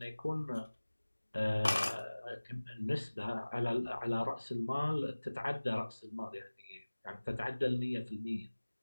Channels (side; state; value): both; inverted; correlation -1.00